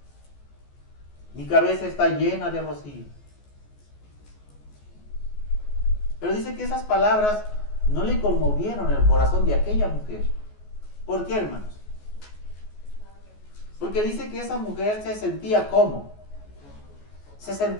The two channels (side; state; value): right; late; 14 ms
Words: Mi cabeza está llena de rocío. Pero dice que esas palabras no le conmovieron el corazón de aquella mujer. ¿Por qué, hermanos? Porque dice que esa mujer se sentía ¿cómo? Se